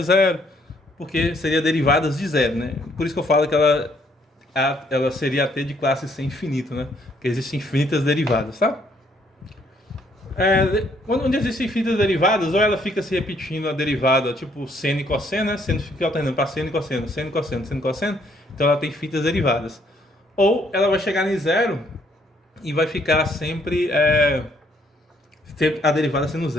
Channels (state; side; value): normal; both; correlation 0.68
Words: 0, porque seria derivadas de 0, né? Por isso que eu falo que ela seria até de classe C infinito, né? Porque existem infinitas derivadas, tá? Onde existem infinitas derivadas, ou ela fica se repetindo a derivada, tipo seno e cosseno, né? Seno fica alternando para seno e cosseno, seno e cosseno, seno e cosseno, então ela tem infinitas derivadas. Ou ela vai chegar em 0 e vai ficar sempre a derivada sendo